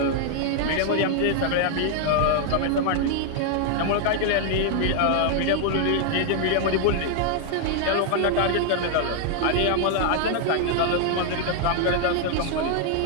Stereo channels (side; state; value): both; different; correlation 0.00